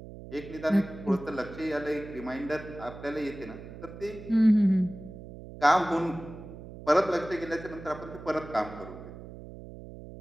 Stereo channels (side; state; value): right; noise; hum, 14 dB below the sound